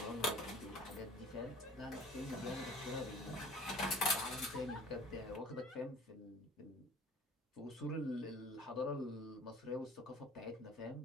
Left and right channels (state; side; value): normal; both; correlation 0.48